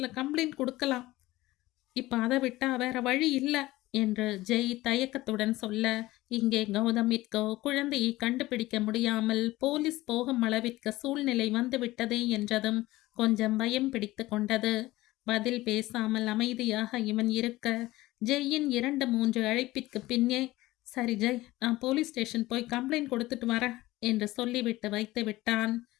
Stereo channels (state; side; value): quieter; right; 18.1 dB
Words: கம்ப்ளைண்ட் கொடுக்கலாம், இப்ப அதை விட்டா வேற வழி இல்லை என்று ஜெய் தயக்கத்துடன் சொல்ல, இங்கே கௌதமிற்கோ குழந்தையை கண்டுபிடிக்க முடியாமல் போலீஸ் போகும் அளவிற்கு சூழ்நிலை வந்துவிட்டதே என்றதும் கொஞ்சம் பயம் பிடித்து கொண்டது. பதில் பேசாமல் அமைதியாக இவன் இருக்க, ஜெய்யின் 2-3 அழைப்பிற்கு பின்னே, சரி ஜெய், நான் போலீஸ் ஸ்டேஷன் போய் கம்ப்ளைண்ட் கொடுத்துட்டு வரேன் என்று சொல்லிவிட்டு வைத்து விட்டான்.